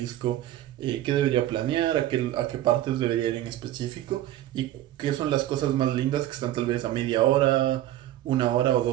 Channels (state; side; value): quieter; left; 13.7 dB